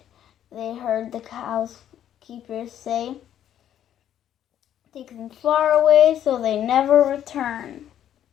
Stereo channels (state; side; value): quieter; right; 10.6 dB